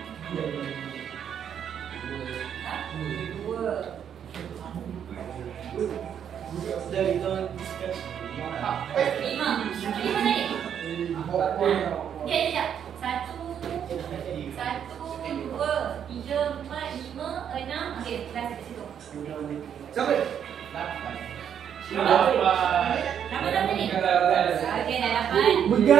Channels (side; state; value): left; quieter; 8.7 dB